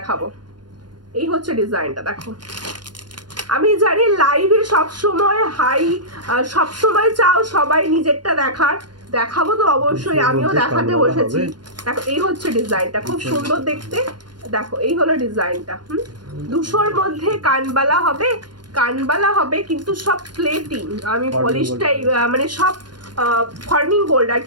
এই হচ্ছে ডিজাইনটা, দেখো। আমি জানি লাইভে সবসময় সবসময় চাও সবাই নিজেরটা দেখার, দেখাবো তো অবশ্যই, আমিও দেখাতে বসেছি। দেখো এই হচ্ছে ডিজাইনটা, খুব সুন্দর দেখতে। দেখো এই হলো ডিজাইনটা। 200-র মধ্যে কানবালা হবে কিন্তু সব প্লেটিং। আমি পলিশটাই মানে সব ফর্মিং গোল্ড আর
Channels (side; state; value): left; late; 0.71 ms